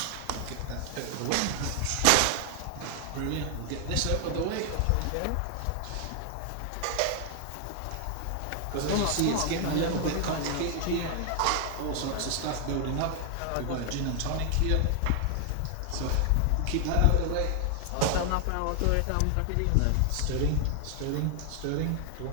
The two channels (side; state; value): both; different; correlation 0.00